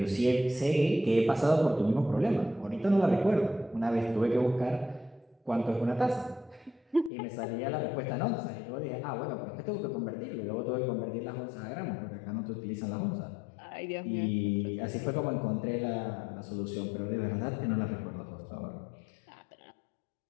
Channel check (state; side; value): drops out; right; at 7.1 s